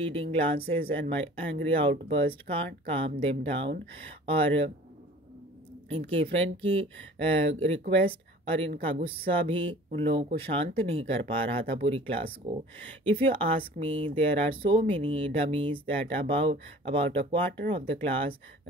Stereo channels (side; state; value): both; normal; correlation 0.46